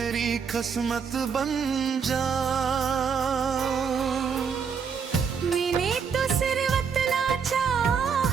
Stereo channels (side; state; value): left; quieter; 6.4 dB